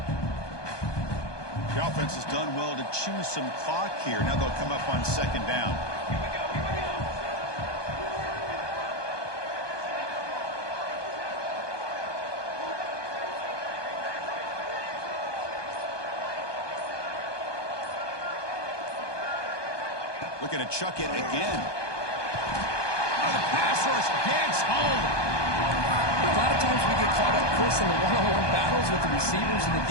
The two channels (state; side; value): late; right; 1.2 ms